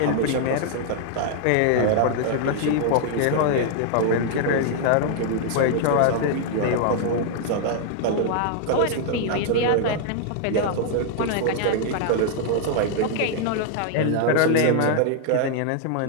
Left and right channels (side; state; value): both; different; correlation 0.00